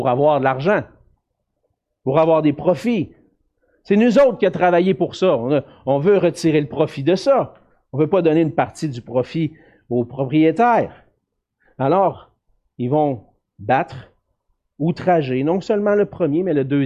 avoir de l'argent, pour avoir des profits. C'est nous autres qui avons travaillé pour ça. On veut retirer le profit de ça. On ne veut pas donner une partie du profit aux propriétaires. Alors, ils vont battre, outrager, non seulement le premier, mais le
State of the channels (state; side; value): identical; both; correlation 1.00